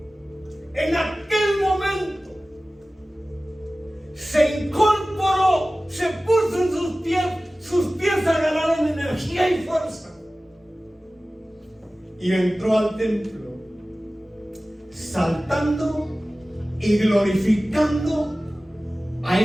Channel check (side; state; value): both; normal; correlation 0.97